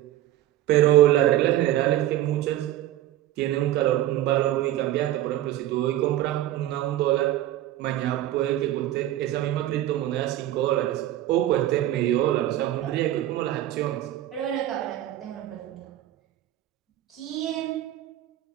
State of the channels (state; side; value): quieter; left; 13.8 dB